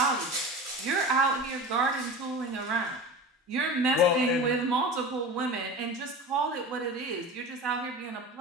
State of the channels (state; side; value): normal; both; correlation 0.31